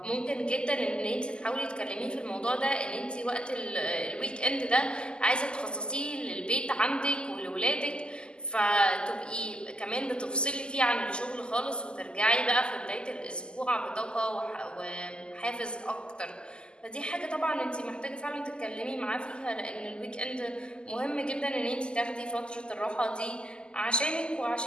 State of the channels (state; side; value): late; right; 0.048 ms